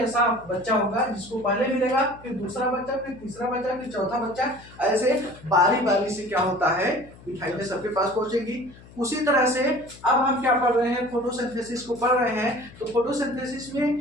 बच्चा होगा जिसको पहले मिलेगा, फिर दूसरा बच्चा, फिर तीसरा बच्चा, फिर चौथा बच्चा, ऐसे बारी बारी से क्या होता है, मिठाइयाँ सबके पास पहुंचेगी। उसी तरह से अब हम क्या पढ़ रहे हैं, फोटोसिंथेसिस को पढ़ रहे हैं। तो फोटोसिंथेसिस में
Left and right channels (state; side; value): noise; left; hum, 21 dB below the sound